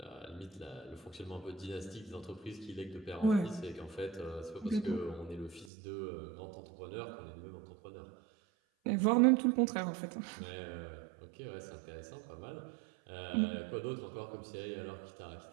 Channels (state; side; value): drops out; left; at 5.7 s